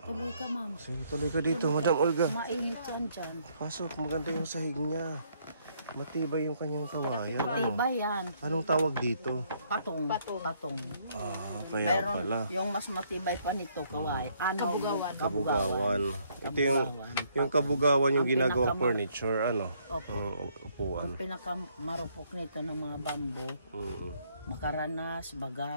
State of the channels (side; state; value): both; inverted; correlation -0.68